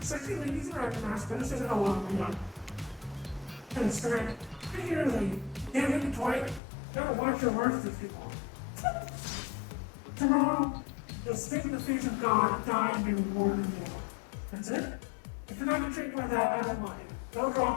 sexy ladies and actors, better say that along with me. And it's great. Particularly, damn it, Dwight, gotta watch your words with people. Tomorrow, you'll spit in the face of God, die, and be rewarded in the That's it? If you're not intrigued by that, I don't mind. Go draw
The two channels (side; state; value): right; drops out; at 6.6 s